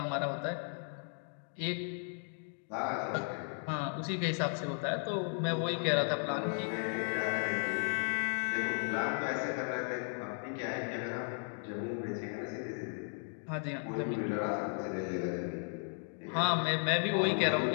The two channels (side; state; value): right; silent; 54 dB below the other